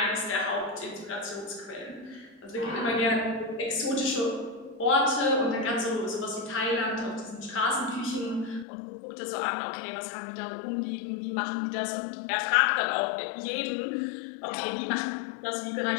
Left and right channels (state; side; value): drops out; right; at 8.7 s